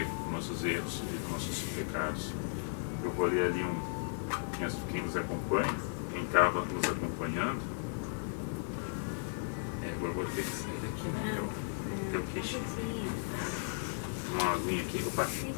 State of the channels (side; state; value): right; silent; digital silence